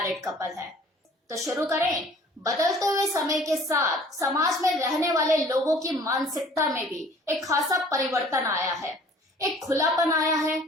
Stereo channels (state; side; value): normal; both; correlation 0.52